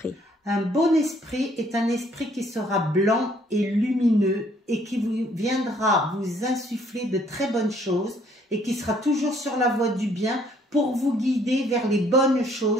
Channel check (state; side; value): normal; both; correlation 0.64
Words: Un bon esprit est un esprit qui sera blanc et lumineux et qui viendra vous insuffler de très bonnes choses et qui sera toujours sur la voie du bien pour vous guider vers les bonnes